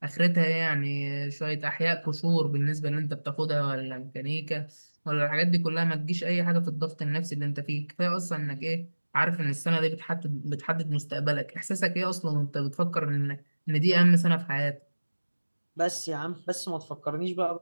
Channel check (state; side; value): inverted; both; correlation -1.00